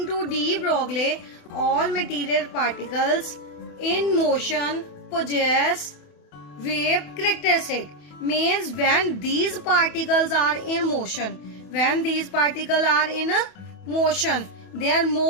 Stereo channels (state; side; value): late; right; 28 ms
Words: to de Broglie, all material particles in motion possess wave characteristic. Means when these particles are in motion, they are